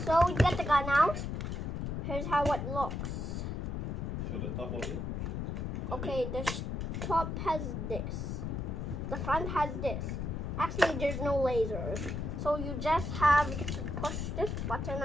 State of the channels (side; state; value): left; noise; rumble, 3 dB below the sound